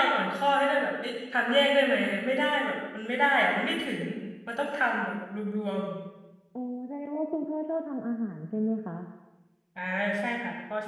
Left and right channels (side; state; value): both; identical; correlation 1.00